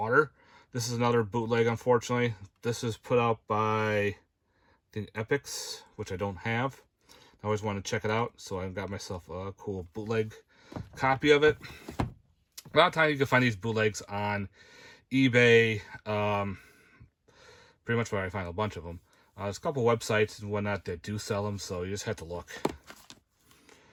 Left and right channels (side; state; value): both; identical; correlation 1.00